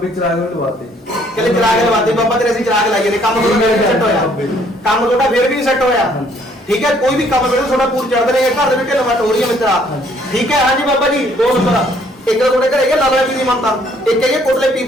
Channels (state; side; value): normal; both; correlation 0.63